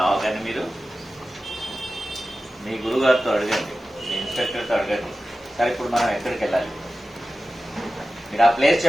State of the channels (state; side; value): normal; both; correlation 0.94